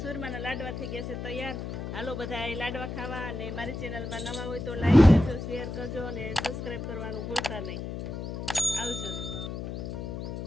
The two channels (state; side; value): noise; left; hum, 6 dB below the sound